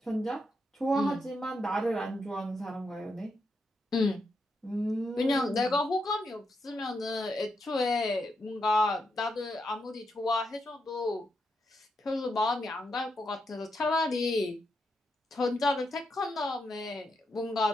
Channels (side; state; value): both; normal; correlation 0.83